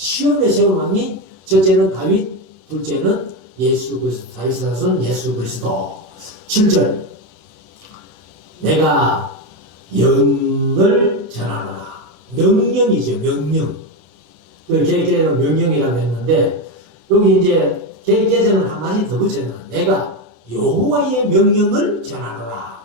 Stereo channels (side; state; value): left; late; 34 ms